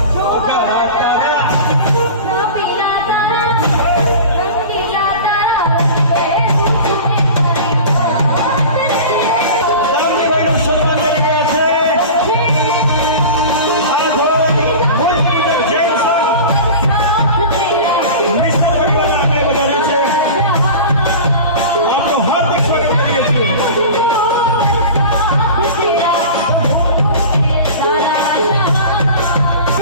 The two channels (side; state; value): both; inverted; correlation -0.34